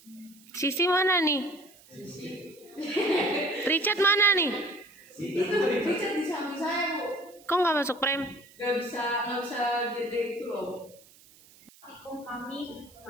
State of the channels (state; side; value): noise; right; hiss, 25 dB below the sound